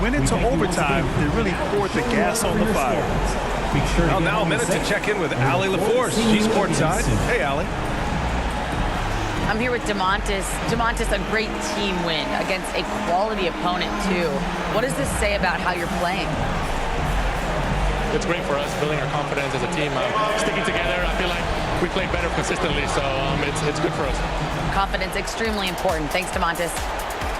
into overtime, they really poured the gas on the fire. Well, now a minute to check in with Allie LaForce. She's courtside. Hey, Allie. I'm here with DeMontis. DeMontis, a great team win against a quality opponent, too. What does this say about how you're playing? It's great for us, building our confidence as a team. Sticking together, I feel like we play better consistently, so it's good for us. Confidence, extremely important. Thanks, DeMontis.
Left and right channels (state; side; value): identical; both; correlation 1.00